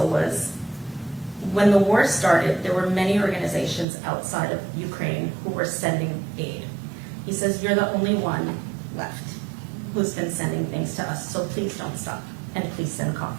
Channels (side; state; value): left; drops out; at 3.9 s